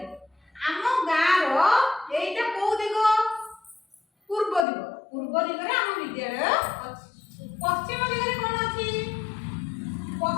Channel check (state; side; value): drops out; right; at 4.7 s